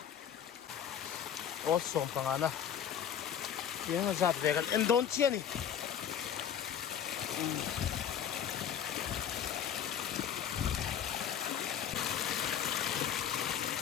ốt xôm bằng anh tiếng giặt về cái em đón chia này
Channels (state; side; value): quieter; right; 8.9 dB